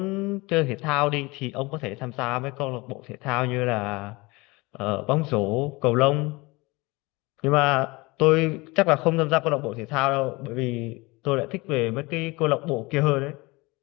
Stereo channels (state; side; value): quieter; right; 23.8 dB